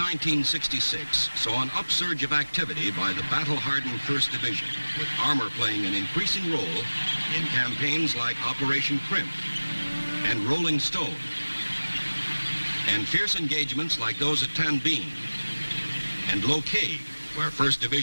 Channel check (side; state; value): both; inverted; correlation -1.00